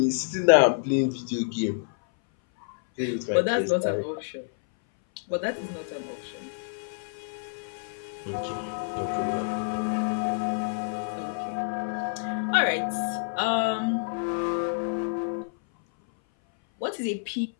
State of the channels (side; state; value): right; silent; 58 dB below the other